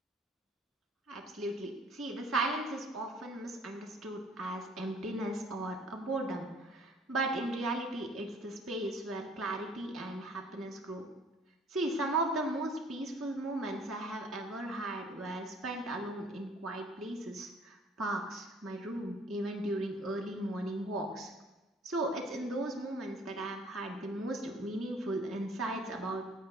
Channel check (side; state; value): both; normal; correlation 0.55